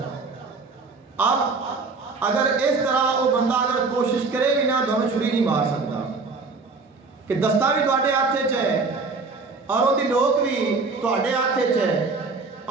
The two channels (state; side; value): quieter; left; 4.1 dB